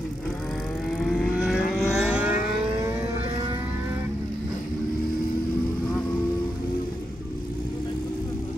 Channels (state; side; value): normal; both; correlation 0.85